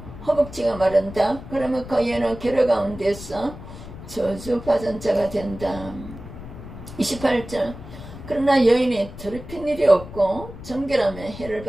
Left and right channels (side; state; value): left; noise; rumble, 13 dB below the sound